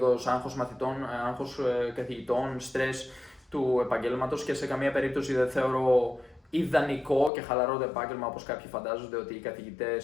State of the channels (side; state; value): right; drops out; at 7.3 s